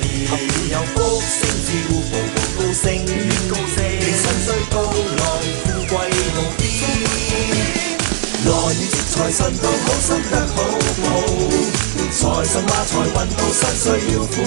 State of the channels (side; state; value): left; silent; digital silence